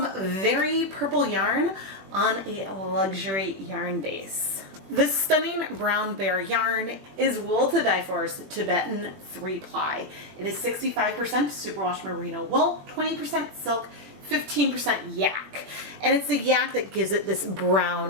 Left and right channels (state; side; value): late; left; 21 ms